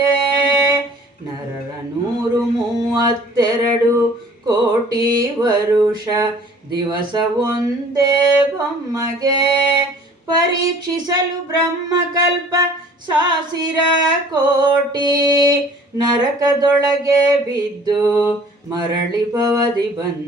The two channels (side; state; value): both; normal; correlation 0.51